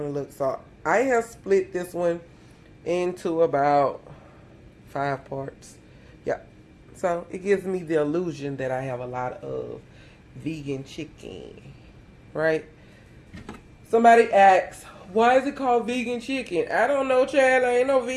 to look. So I have split this one into about 5 parts. Yeah. So it gives me the illusion that I have a lot of vegan chicken, right? Somebody asks, why is it called vegan chicken? I don't know, child. I ain't no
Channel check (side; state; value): both; identical; correlation 1.00